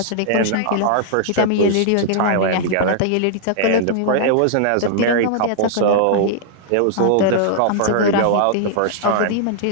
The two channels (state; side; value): different; both; correlation -0.01